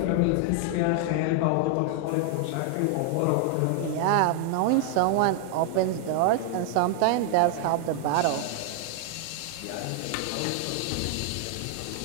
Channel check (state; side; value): different; both; correlation 0.00